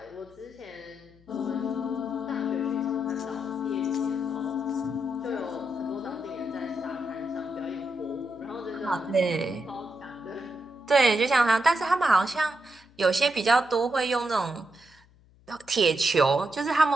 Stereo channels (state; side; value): noise; left; hum, 28 dB below the sound